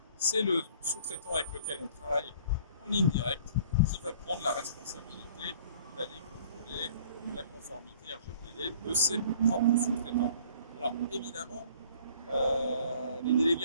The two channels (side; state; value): both; inverted; correlation -0.53